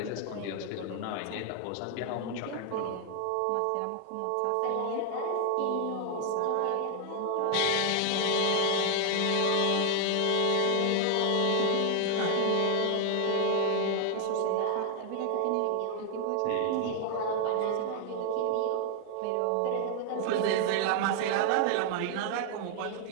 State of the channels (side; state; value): both; different; correlation 0.00